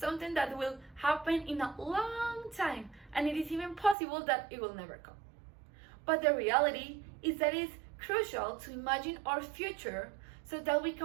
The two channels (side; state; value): left; drops out; at 4.0 s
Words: that will happen in a long time, and it is even possible that it will never come. But the reality is that it's crucial to imagine our future so that we